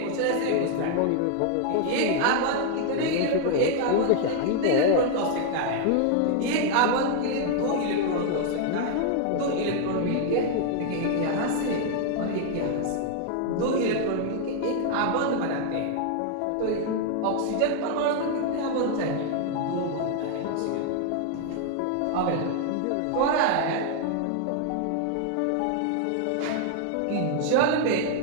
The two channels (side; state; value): both; different; correlation 0.00